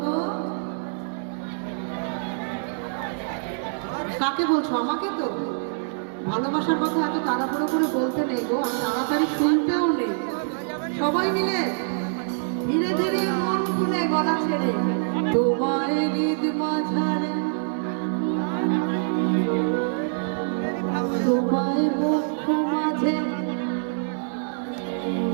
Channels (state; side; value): silent; left; 62 dB below the other